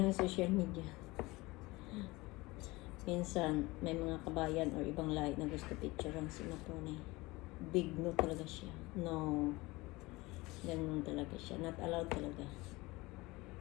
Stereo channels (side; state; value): right; quieter; 21.8 dB